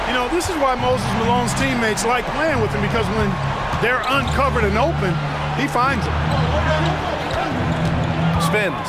You know, this is why Moses Malone's teammates like playing with him, because when they're uncovered and open, he finds them. Spins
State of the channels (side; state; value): both; identical; correlation 1.00